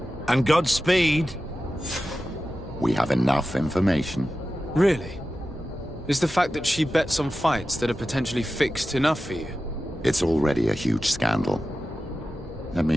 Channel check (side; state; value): both; normal; correlation 0.93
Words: And Godspeed. We have enough information. Really? Is the fact that she bets on fights that are potentially fixed enough for you? It's already a huge scandal. Let